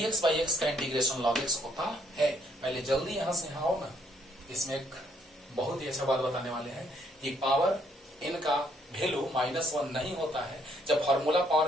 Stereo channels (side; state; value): both; normal; correlation 0.68